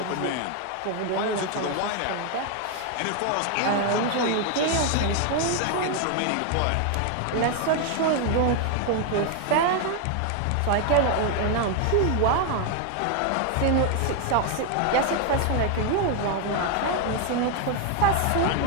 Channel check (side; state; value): both; different; correlation 0.01